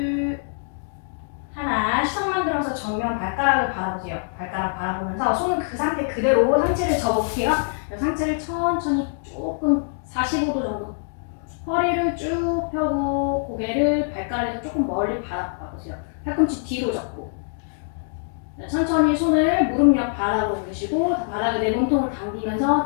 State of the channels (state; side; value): silent; right; digital silence